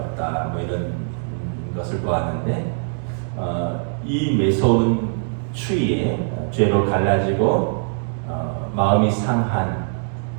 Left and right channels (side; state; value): left; silent; 64 dB below the other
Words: 뭐 이런 것을 보았는데 이 매서운 추위에 죄로 갈라지고 마음이 상한